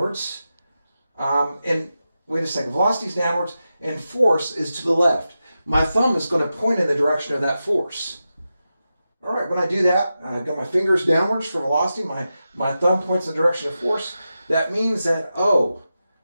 And wait a second. Velocity is downwards, and force is to the left. My thumb is going to point in the direction of that force. All right, when I do that, I've got my fingers downwards for velocity. My thumb points in the direction of force. That means that,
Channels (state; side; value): inverted; both; correlation -0.91